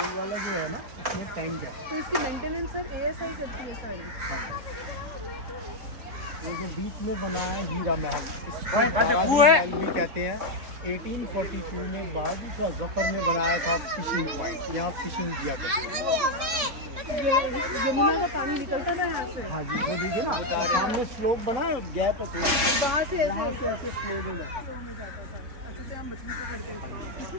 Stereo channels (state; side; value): late; left; 3.5 ms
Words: वाला जो है ना, उसमें टैंक है। तो इसकी मेंटेनेंस सब ASI करती है सारी। वो जो बीच में बना है हीरा महल, इसको बारादी महल भी कहते हैं। 1842 में बहादुर शाह जफर ने बनाया था फिशिंग पॉइंट। यहाँ फिशिंग किया करते थे। यमुना का पानी निकलता था यहाँ से। हाँ जी, वो देखिए ना सामने स्लोप बना है, गैप है, वहाँ से यहाँ से ऐसे फ्लो हो जाता है।